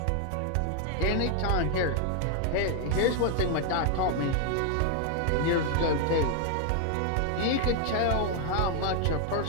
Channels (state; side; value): different; both; correlation 0.00